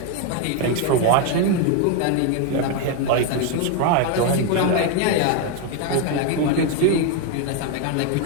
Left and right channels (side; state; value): both; different; correlation 0.01